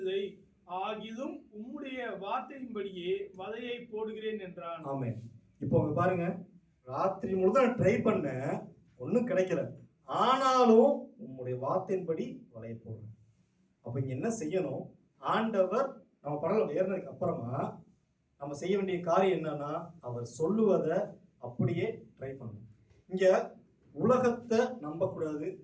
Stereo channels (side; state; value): both; identical; correlation 1.00